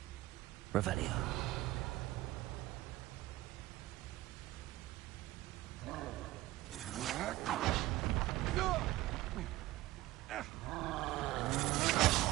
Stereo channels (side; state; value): left; quieter; 17.2 dB